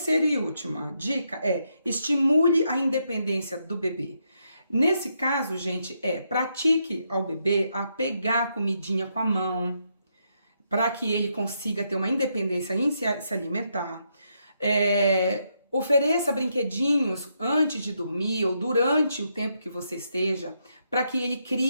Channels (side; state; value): both; inverted; correlation -0.79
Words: e última dica é estimule a independência do bebê. Nesse caso, gente, pratique ao bebê a pegar a comidinha com a mão, para que ele consiga ter uma independência em se alimentar. Ofereça brinquedinhos antes de dormir ou durante o tempo que você esteja, para que ele